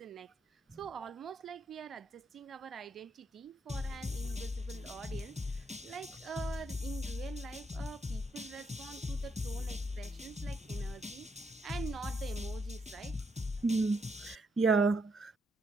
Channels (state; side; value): normal; both; correlation 0.77